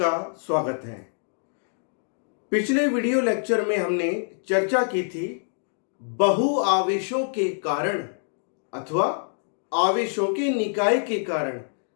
स्वागत है। पिछले वीडियो लेक्चर में हमने चर्चा की थी बहु आवेशों के कारण अथवा आवेशों के निकाय के कारण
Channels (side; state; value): right; silent; digital silence